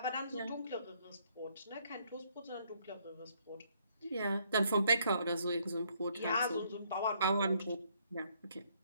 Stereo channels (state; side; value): inverted; both; correlation -0.69